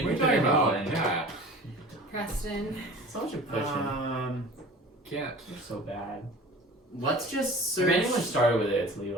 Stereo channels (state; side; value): normal; both; correlation 0.41